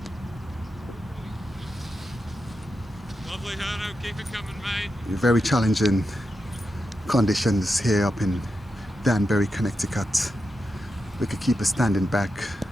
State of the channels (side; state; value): both; normal; correlation 0.88